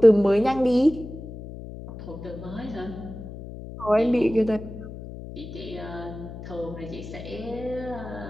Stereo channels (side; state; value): left; noise; hum, 12 dB below the sound